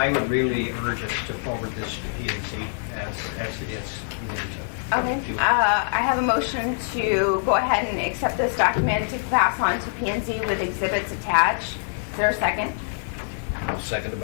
would really urge us to forward this to P&Z as it is. Okay. I have a motion to go ahead and accept this document to pass on to P&Z with exhibits attached. Is there a second? I'll second it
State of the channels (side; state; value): right; silent; digital silence